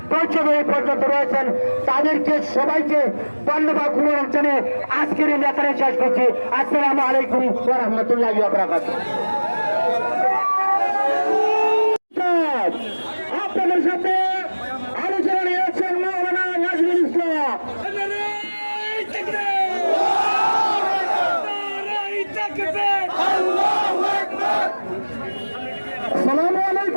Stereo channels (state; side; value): inverted; both; correlation -1.00